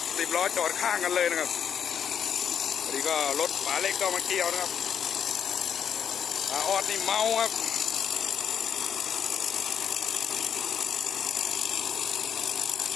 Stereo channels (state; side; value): quieter; right; 8.1 dB